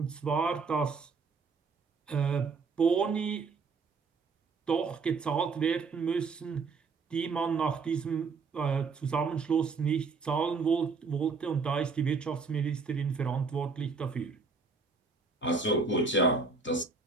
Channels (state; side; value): quieter; left; 4.6 dB